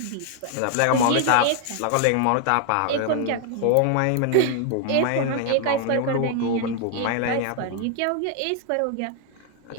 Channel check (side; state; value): both; different; correlation 0.00